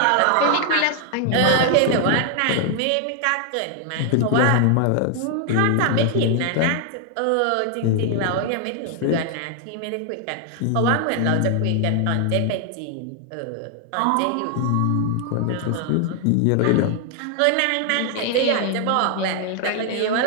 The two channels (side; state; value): both; different; correlation 0.00